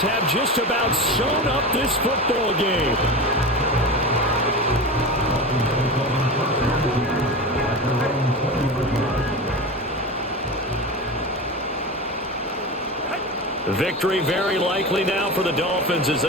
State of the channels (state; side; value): normal; both; correlation 0.26